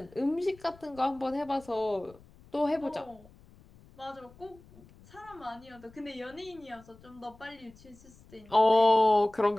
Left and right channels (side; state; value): left; noise; rumble, 24 dB below the sound